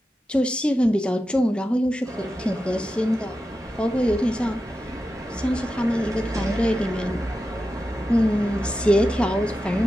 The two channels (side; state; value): both; normal; correlation 0.91